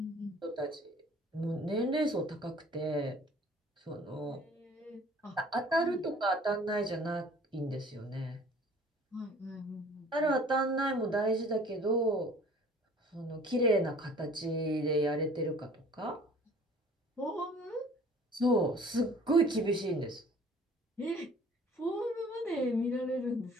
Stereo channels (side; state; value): both; normal; correlation 0.51